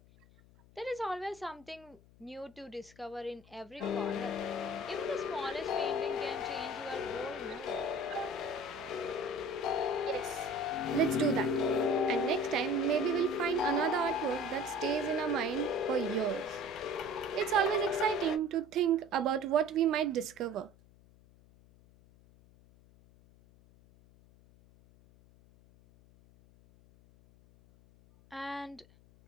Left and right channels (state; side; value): noise; left; hum, 26 dB below the sound